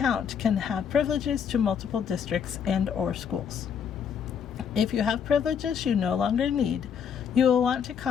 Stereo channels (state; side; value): quieter; right; 7.5 dB